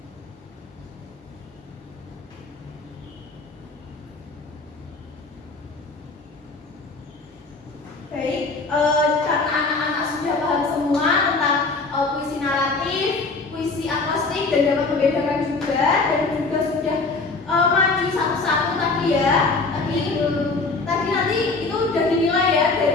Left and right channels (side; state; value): right; quieter; 3.8 dB